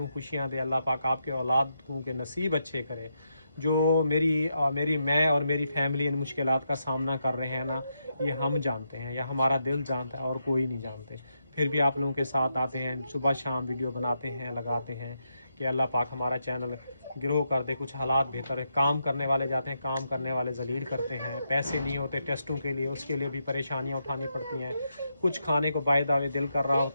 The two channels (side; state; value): both; inverted; correlation -0.82